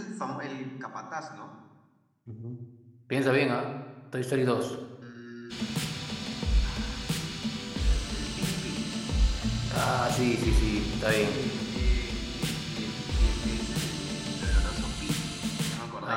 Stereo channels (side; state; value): both; identical; correlation 1.00